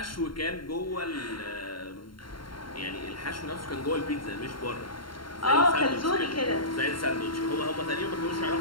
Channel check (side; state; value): right; late; 0.73 ms